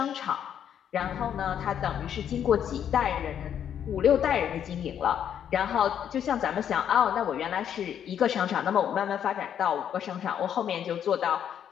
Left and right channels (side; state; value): right; quieter; 9.2 dB